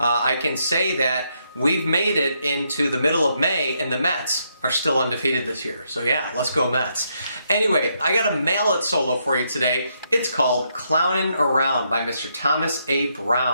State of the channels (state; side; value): inverted; both; correlation -0.77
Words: can say that we've made it into the middle of May and the Mets are still undefeated this year. So yeah, let's go Mets. Anyway, I got a mallet solo for you today. It's called Clownin Around by Mr. Thomas A.